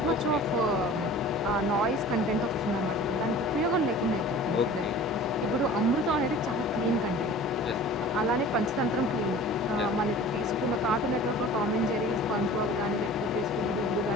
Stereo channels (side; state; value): both; normal; correlation 0.42